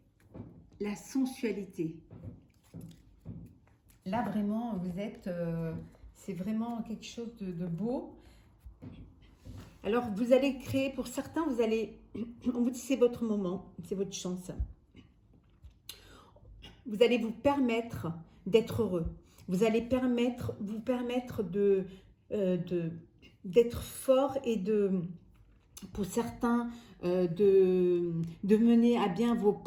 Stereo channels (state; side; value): identical; both; correlation 1.00